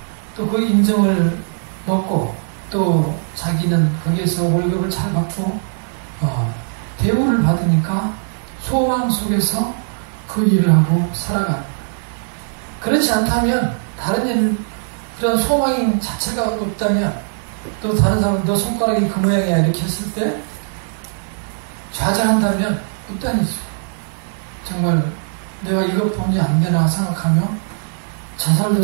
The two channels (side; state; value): left; silent; digital silence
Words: 또 그 인정을 먹고 또 자기는 거기에서 월급을 잘 받고 대우를 받으니까 소망 속에서 그 일을 하고 살아갑니다. 그렇지 않다면 다른 일, 그런 소망 자체가 없다면 또 다른 사람은 너 손가락이 그 모양이야 이렇게 했을 때 좌절한다면 끝단이죠. 정말 내가 이것뿐이 안 되나 생각하며 자살도